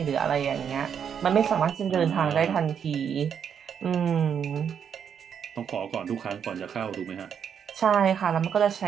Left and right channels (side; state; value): left; quieter; 7.8 dB